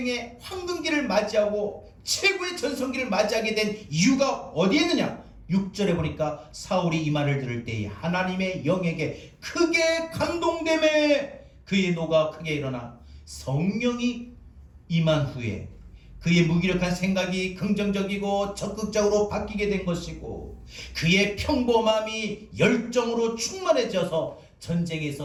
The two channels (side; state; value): both; identical; correlation 1.00